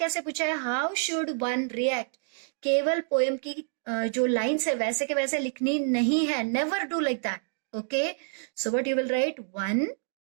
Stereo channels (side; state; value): left; silent; digital silence